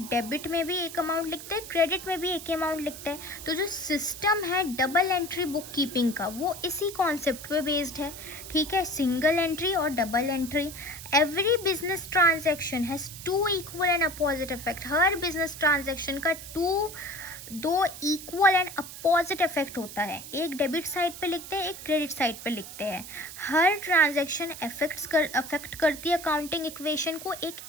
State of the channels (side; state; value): right; noise; hiss, 12 dB below the sound